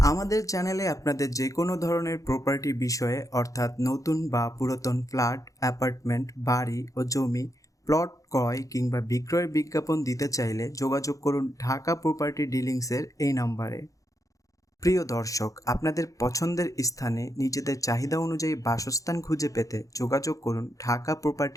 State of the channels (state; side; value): late; right; 0.16 ms